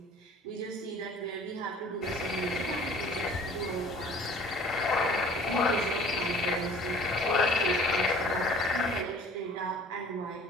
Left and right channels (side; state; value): both; normal; correlation 0.49